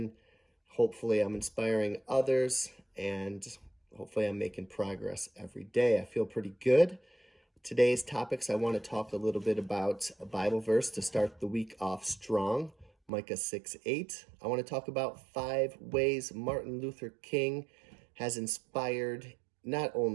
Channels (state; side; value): drops out; left; at 13.1 s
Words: Hopefully, I'm inspiring others and hopefully, I'm making progress every day. I feel pretty good. Today's topics, I want to talk a little bit about a Bible verse to start the week off strong. Micah 6:8. I want to talk about 5 ways Martin Luther King has inspired not